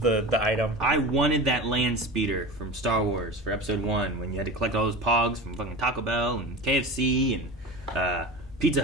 item. I wanted that land speeder from Star Wars for Episode 1 when you had to collect all those pogs from fucking Taco Bell and KFC and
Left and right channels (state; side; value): normal; both; correlation 0.30